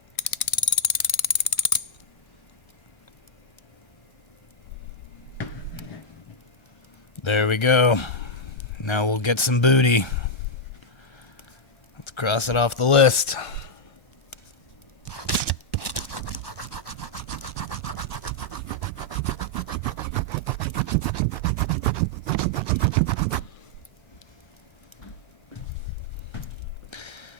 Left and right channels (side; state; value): right; late; 1.3 ms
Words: There we go. Now we'll get some booty. Cross it off the list.